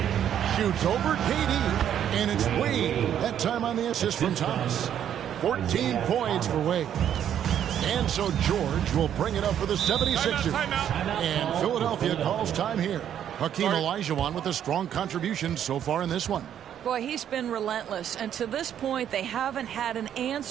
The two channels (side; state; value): left; quieter; 9.8 dB